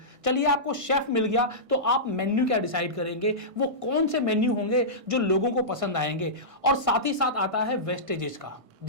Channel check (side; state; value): left; late; 1.6 ms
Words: चलिए, आपको शेफ मिल गया तो आप मेन्यू क्या डिसाइड करेंगे, वो कौन से मेन्यू होंगे जो लोगों को पसंद आएंगे। और साथ ही साथ आता है वेस्टेजेस का।